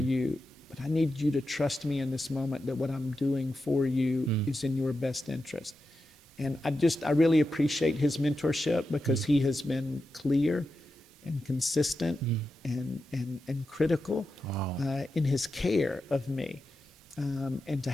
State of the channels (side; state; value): both; normal; correlation 0.89